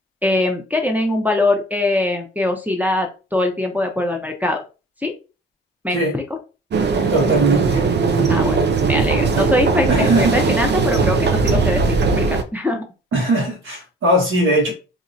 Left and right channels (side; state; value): both; normal; correlation 0.46